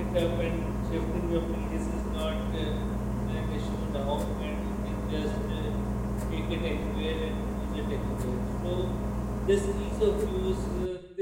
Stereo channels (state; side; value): identical; both; correlation 1.00